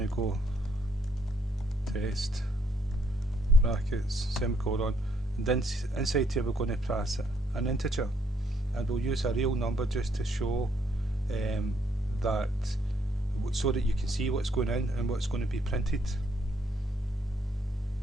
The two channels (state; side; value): normal; both; correlation 0.71